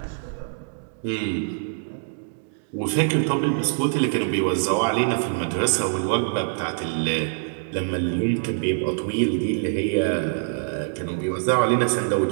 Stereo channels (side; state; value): left; silent; digital silence